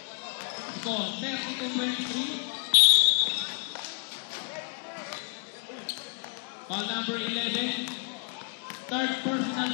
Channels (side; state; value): right; quieter; 39.9 dB